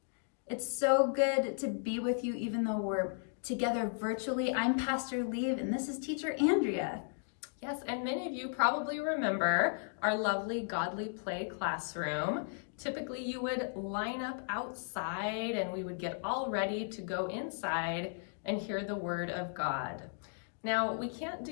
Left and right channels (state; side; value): silent; right; digital silence